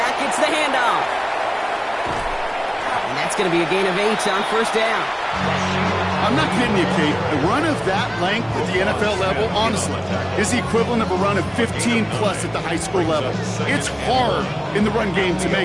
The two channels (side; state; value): both; identical; correlation 1.00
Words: going to be a gain of 8 on first down. I'm not kidding you, Kate. A run of that length at the NFL level, honestly, is the equivalent of a run of 15-plus at the high school level. It's hard in the run game to